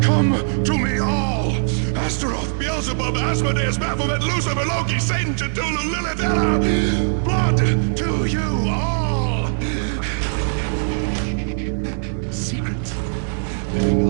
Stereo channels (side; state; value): left; silent; digital silence